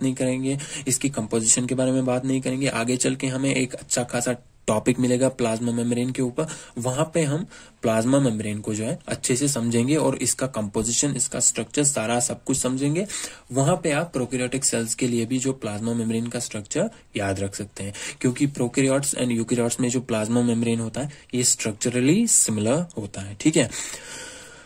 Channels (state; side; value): identical; both; correlation 1.00